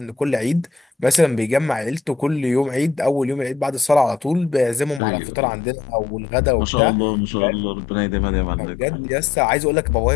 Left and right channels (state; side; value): drops out; right; at 5.0 s